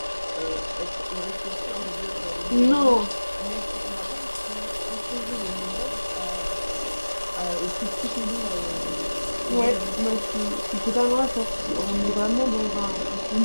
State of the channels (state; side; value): inverted; both; correlation -1.00